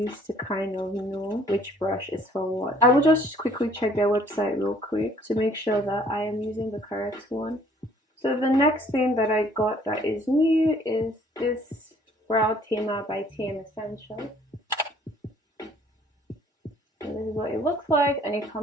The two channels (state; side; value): normal; both; correlation 0.58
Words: to kind of know which brush is for what. I will just quickly check their website real quick to make sure that I am using the correct one. So the next thing that I got that is new is this Brow Tamer by TM Essentials. And this is what it looks like, and it